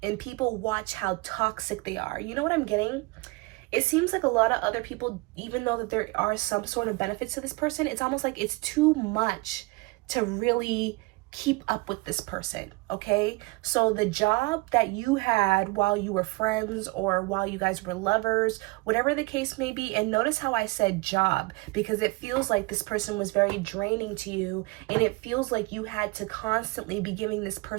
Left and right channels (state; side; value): quieter; left; 24.5 dB